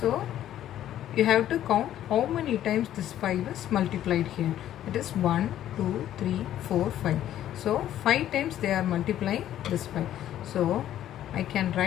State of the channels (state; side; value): quieter; right; 11.9 dB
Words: you have to count how many times this 5 is multiplied here. It is 1, 2, 3, 4, 5. So 5 times they are multiplying this 5. So I can